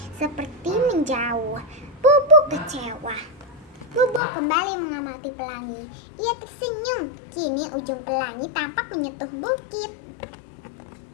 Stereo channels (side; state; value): right; drops out; at 4.2 s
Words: seperti menjauh. Bobo kecewa. Bobo kembali mengamati pelangi. Ia tersenyum. Kini ujung pelangi tampak menyentuh bukit.